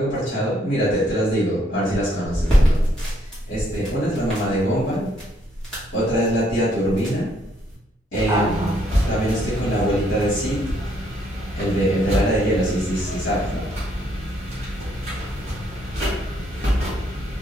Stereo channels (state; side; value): normal; both; correlation 0.70